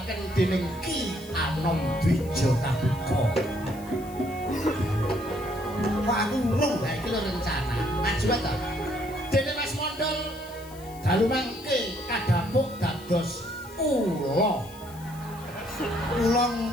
dening Ki Anom Dwija Kabuka. Kok aku urung? Lah iki lho rencana. Maju ta. Dene Mas Mondol dalu mangke kadhapuk dados Kula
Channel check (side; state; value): left; noise; hiss, 21 dB below the sound